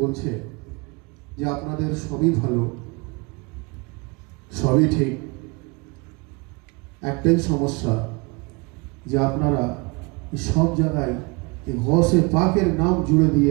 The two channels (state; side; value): quieter; left; 29.0 dB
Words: বলছে যে আপনাদের সবই ভালো, সবই ঠিক, একটাই সমস্যা যে আপনারা সব জায়গায় গৌসে পাকের নাম জুড়ে দিয়ে